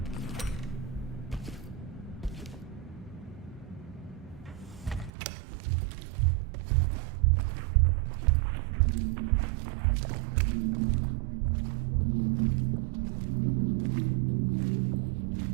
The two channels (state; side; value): drops out; left; at 5.1 s